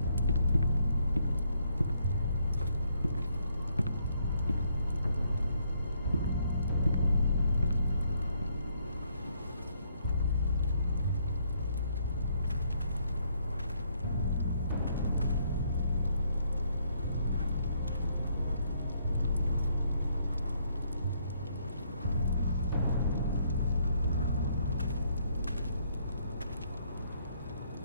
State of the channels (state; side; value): inverted; both; correlation -0.70